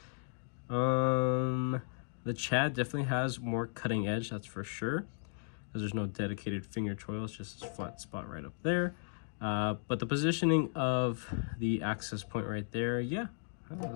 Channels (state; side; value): silent; right; digital silence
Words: The Chad definitely has more cutting edge, that's for sure. because there's no dedicated finger choil. It's just this flat spot right up there. But the positioning of the access point right there, yeah,